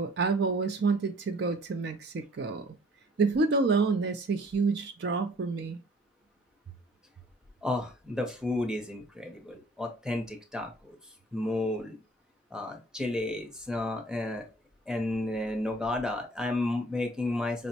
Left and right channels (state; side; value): normal; both; correlation 0.55